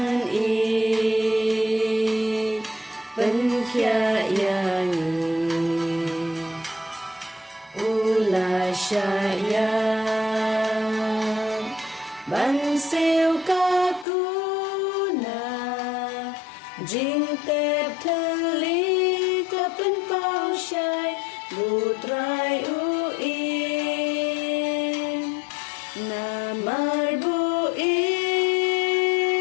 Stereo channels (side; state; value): right; drops out; at 14.1 s